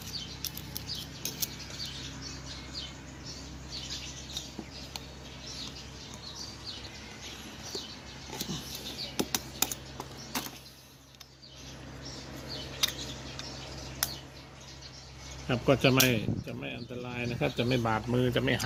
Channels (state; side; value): identical; both; correlation 1.00